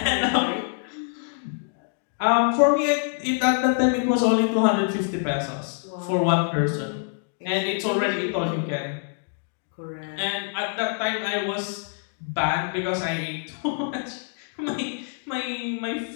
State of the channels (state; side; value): silent; right; 61 dB below the other